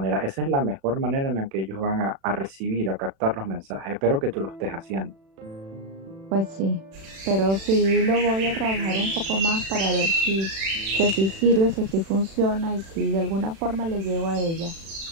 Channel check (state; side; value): late; left; 36 ms